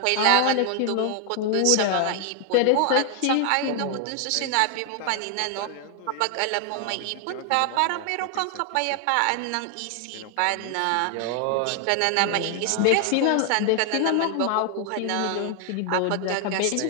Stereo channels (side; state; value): both; different; correlation 0.00